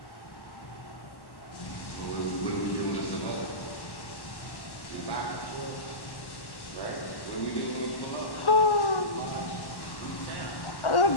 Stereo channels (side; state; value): right; late; 1.1 ms